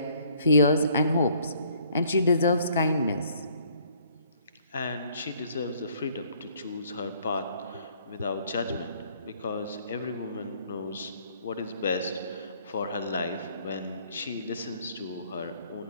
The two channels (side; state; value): both; inverted; correlation -0.62